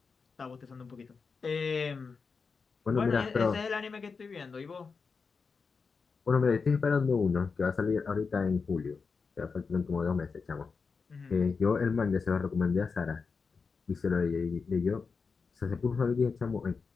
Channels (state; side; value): quieter; right; 5.0 dB